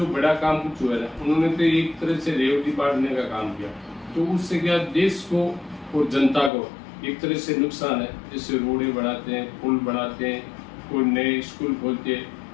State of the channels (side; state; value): right; drops out; at 6.5 s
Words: बड़ा काम कुछ हुआ है उन्होंने तो एक तरह से रेवड़ी बांटने का काम किया, तो उससे क्या देश को और जनता को एक तरह से नुकसान है। जैसे रोडें बनाते हैं, पुल बनाते हैं, कोई नए स्कूल खोलते हैं,